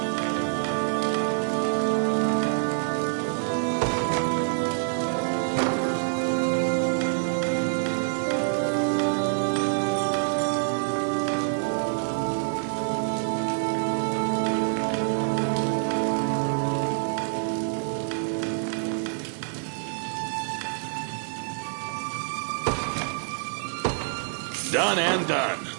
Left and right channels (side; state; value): left; silent; digital silence